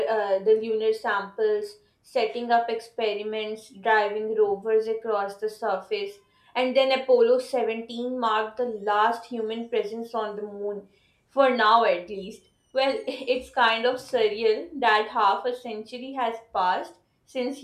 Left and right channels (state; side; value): identical; both; correlation 1.00